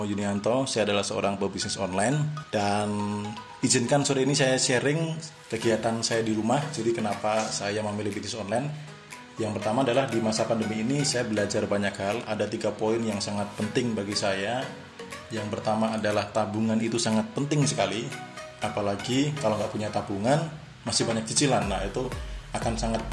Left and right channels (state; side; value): identical; both; correlation 1.00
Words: Yunianto. Saya adalah seorang pebisnis online dan izinkan sore ini saya sharing kegiatan saya di rumah. Jadi kenapa saya memilih bisnis online? Yang pertama adalah di masa pandemi ini saya belajar banyak hal. Ada 3 poin yang sangat penting bagi saya. Yang pertama adalah tabungan itu sangat penting sekali. Apalagi kalau nggak punya tabungan, masih banyak cicilan. Nah, itu akan sangat